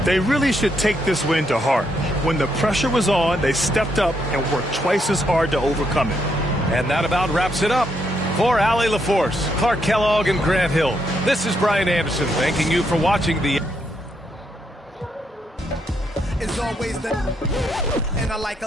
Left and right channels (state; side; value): normal; both; correlation 0.77